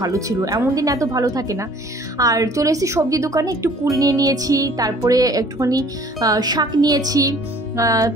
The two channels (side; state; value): both; normal; correlation 0.53